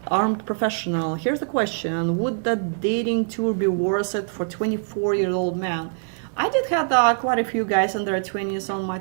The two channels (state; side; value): silent; left; digital silence